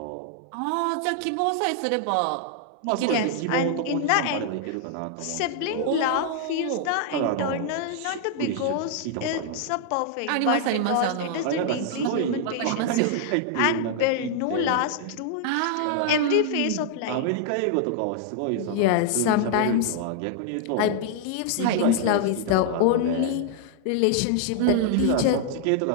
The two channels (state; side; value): different; both; correlation -0.01